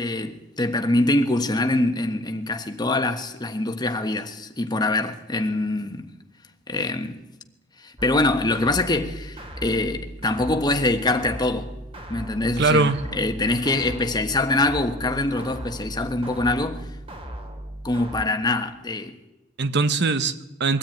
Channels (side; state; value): both; normal; correlation 0.43